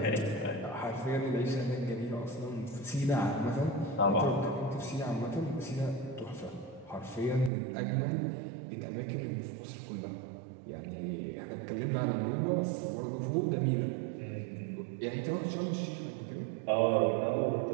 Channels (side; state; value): left; drops out; at 7.5 s